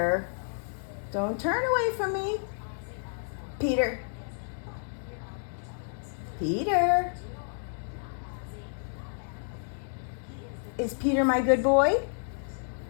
Don't turn away from me. Peter? Peter? Is Peter my good boy?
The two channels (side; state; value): right; silent; digital silence